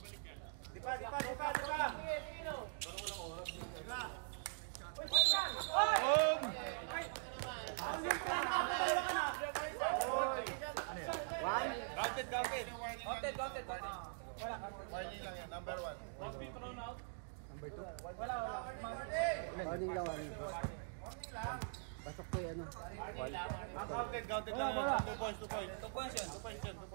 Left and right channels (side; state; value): left; silent; digital silence